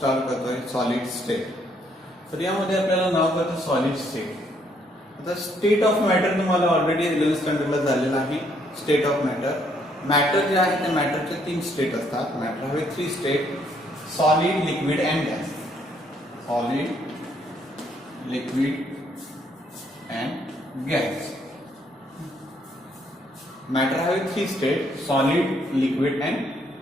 करतोय सॉलिड स्टेट. तर यामध्ये आपल्याला नाव करतो सॉलिड स्टेट. आता स्टेट ऑफ मॅटर तुम्हाला ऑलरेडी 11th स्टँडर्डला झालेला आहे. स्टेट ऑफ मॅटर जे आहे त्या मॅटरचे 3 स्टेट असतात. मॅटर हवे 3 state: solid, liquid and gas. Solid, liquid and gas. Matter हवे 3 state: solid, liquid and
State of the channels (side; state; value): both; normal; correlation 0.69